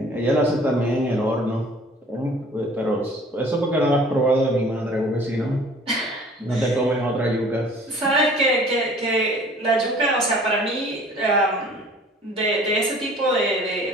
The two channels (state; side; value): normal; both; correlation 0.51